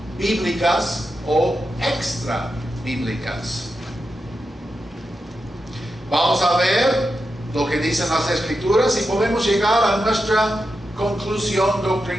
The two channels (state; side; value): normal; both; correlation 0.88